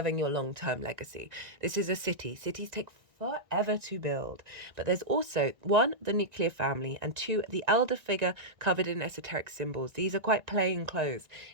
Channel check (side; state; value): left; late; 1.6 ms